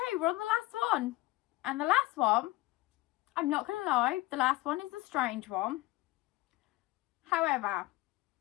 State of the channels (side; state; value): right; quieter; 18.8 dB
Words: we're on the last one. And the last one, I'm not going to lie, the last one is a strange one. However,